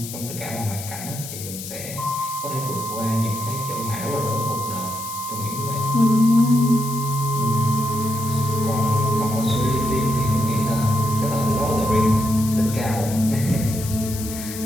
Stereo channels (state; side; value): noise; left; hiss, 10 dB below the sound